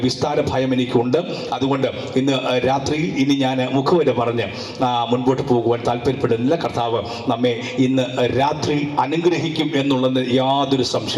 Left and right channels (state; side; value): identical; both; correlation 1.00